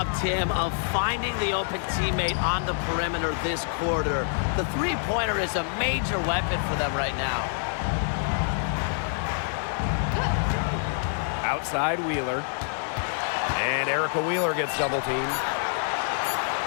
Tim, of finding the open teammate on the perimeter this quarter. The 3-pointer is a major weapon for them right now. Outside Wheeler. And Erica Wheeler gets double teamed.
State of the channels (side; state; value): right; silent; 59 dB below the other